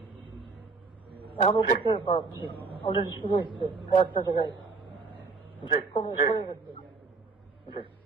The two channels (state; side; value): quieter; left; 4.2 dB